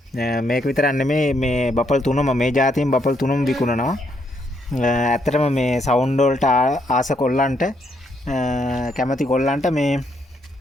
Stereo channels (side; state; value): both; normal; correlation 0.74